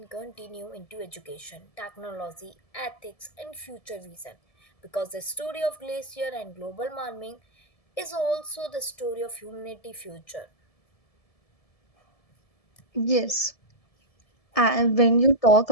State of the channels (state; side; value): late; right; 1.7 ms